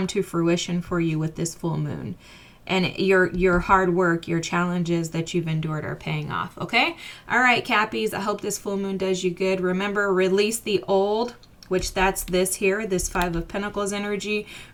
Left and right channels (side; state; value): both; identical; correlation 1.00